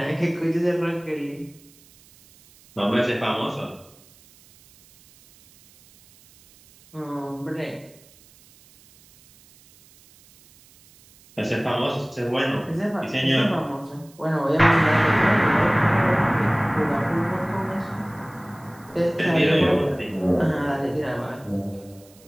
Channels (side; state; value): right; noise; hiss, 27 dB below the sound